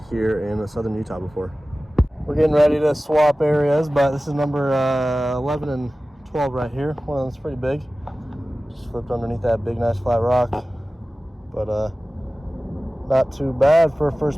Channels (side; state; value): both; normal; correlation 0.97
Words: here in southern Utah before. We're getting ready to swap areas, but this is number 11 and 12 right here. One of them's pretty big. Just flipped underneath that big, nice flat rock. But not too bad for a